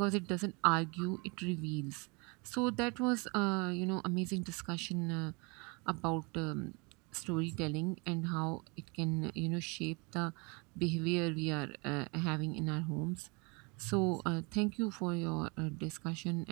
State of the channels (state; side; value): quieter; left; 30.1 dB